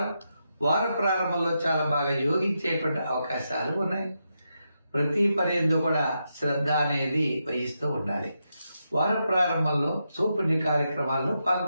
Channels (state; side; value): inverted; both; correlation -0.85